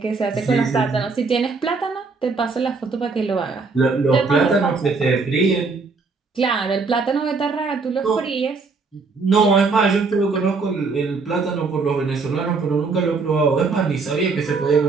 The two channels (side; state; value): left; quieter; 4.3 dB